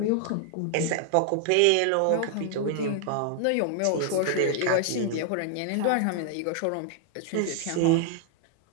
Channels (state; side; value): different; both; correlation 0.00